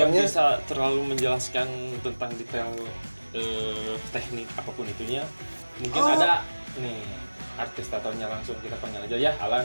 tatonya. bisa terlalu menjelaskan tentang detail teknik apapun itunya. Mungkin ada nih artis tatonya, langsung kita panggil aja ya.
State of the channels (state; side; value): inverted; both; correlation -1.00